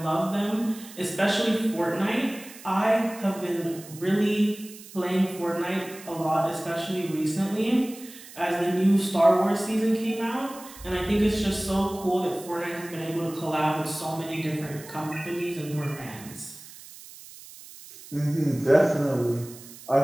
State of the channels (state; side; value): noise; right; hiss, 17 dB below the sound